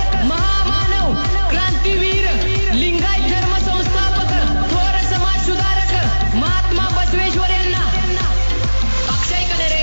महामानव क्रांतीवीर लिंगायत धर्म संस्थापक थोर समाज सुधारक महात्मा बसवेश्वर यांना अक्षय कनेरे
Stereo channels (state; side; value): inverted; both; correlation -1.00